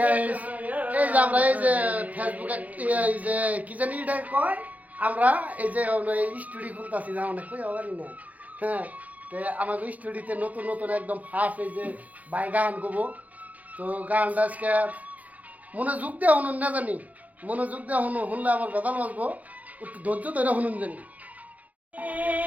গাইস এই যে আমরা এই যে ফেসবুকে এই যে কি জানি এটা কয় আমরা এই যে স্টুডিও খুলতাছি না অনেক কই আবার না হ্যাঁ তে আমাকে স্টুডিওতে নতুন নতুন একদম ফার্স্ট এই যে বাই গান গাবো তো গানটা আজকে মনোযোগ দিয়ে শুনুন না জানি মনোযোগ দিয়ে শুনলে আমার বেদাল বাজবো একটু ধৈর্য ধরে শুনুন জানি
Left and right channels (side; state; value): left; late; 0.075 ms